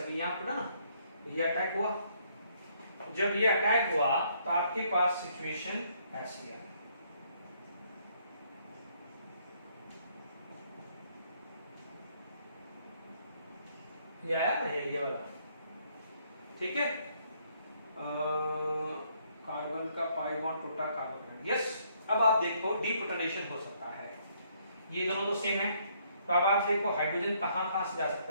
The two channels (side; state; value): both; inverted; correlation -0.68